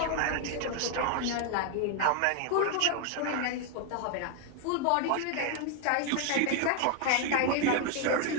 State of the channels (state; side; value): different; both; correlation 0.00